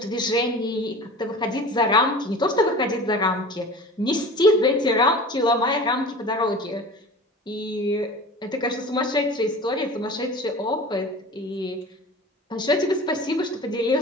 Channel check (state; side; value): normal; both; correlation 0.38